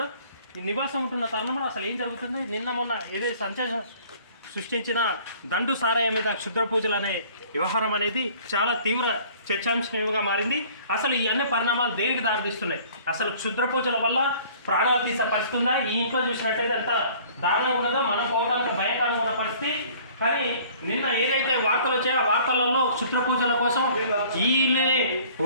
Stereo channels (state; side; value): inverted; both; correlation -0.52